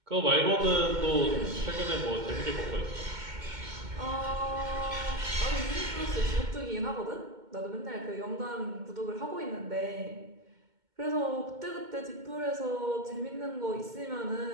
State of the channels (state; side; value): late; left; 2.2 ms